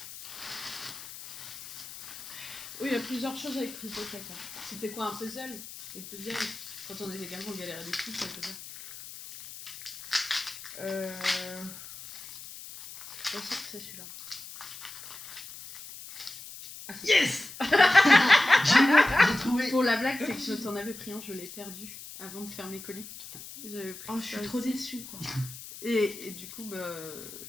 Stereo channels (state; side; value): noise; left; hiss, 13 dB below the sound